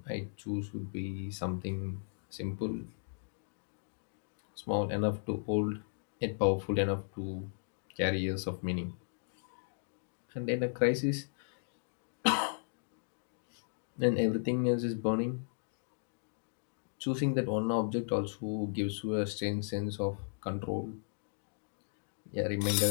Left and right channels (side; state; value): right; silent; digital silence